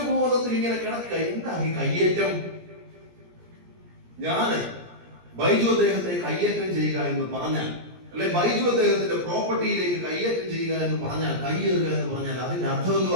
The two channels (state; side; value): late; left; 17 ms